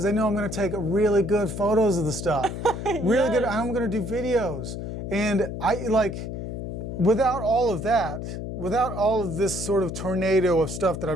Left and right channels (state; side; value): noise; left; hum, 6 dB below the sound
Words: they know I'm going to take really good photos of the stuff. Really good. I'm going to do videos. And without all of that, without all of this sort of tornado of stuff that